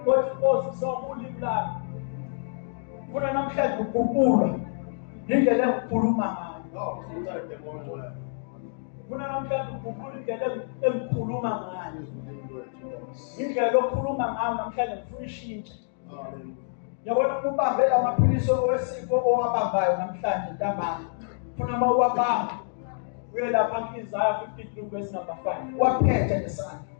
othi Nkosi sokulimi lami. Ufuna namhlanje ukukhuluma indlela engikhuluma ngayo. Ufuna namhlanje ukukhuluma indlela engikhuluma ngayo. Indlela okhuluma ngayo namhlanje ngifuna ishintshe. Yabona ubambe lamaphilisi owesifo owabambayo namhlanje ntambama. Ufuna mawuwabamba uye lapha ku-Isaiah 53 verse number 5. Waphethe ngesandla.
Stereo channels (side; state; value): right; silent; digital silence